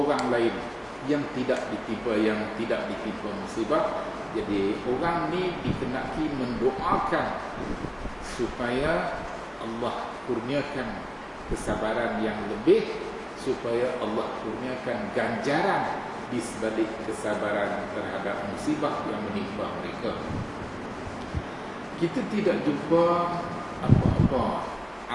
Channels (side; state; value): both; identical; correlation 1.00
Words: lain yang tidak ditimpa musibah. Jadi orang ni dikenaki mendoakan supaya Allah kurniakan kesabaran yang lebih, supaya Allah kurniakan ganjaran di sebalik kesabaran terhadap musibah yang menimpa mereka. Kita tidak jumpa apa-apa